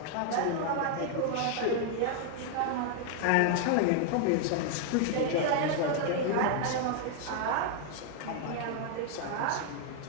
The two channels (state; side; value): different; both; correlation 0.00